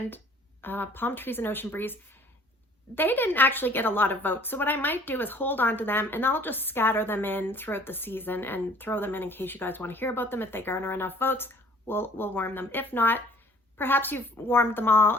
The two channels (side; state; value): both; normal; correlation 0.54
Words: Palm Trees and Ocean Breeze, they didn't actually get a lot of votes. So what I might do is hold on to them and I'll just scatter them in throughout the season and throw them in case you guys want to hear about them. If they garner enough votes, we'll warm them. If not, perhaps you've warmed them